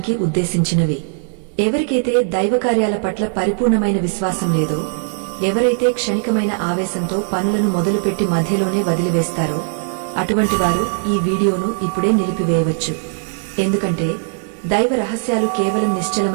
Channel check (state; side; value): silent; left; digital silence